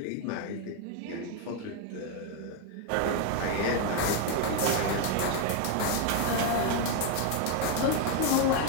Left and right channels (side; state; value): both; different; correlation 0.01